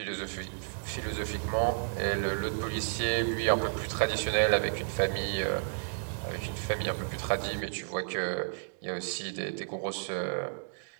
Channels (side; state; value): left; silent; digital silence